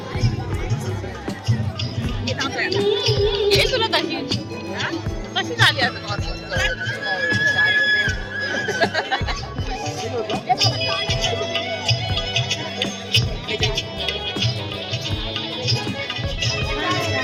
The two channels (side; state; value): both; identical; correlation 1.00